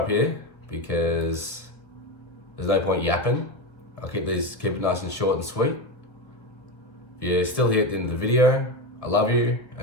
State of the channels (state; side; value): late; right; 1.6 ms